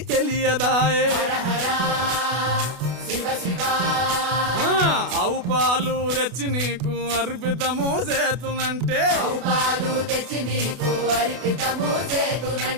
తెలియదాయే, హర హర శివ శివ. ఆవు పాలు తెచ్చి నీకు అర్పితము చేతునంటే, ఆవు పాలు తెచ్చి నీకు అర్పితము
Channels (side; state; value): left; late; 32 ms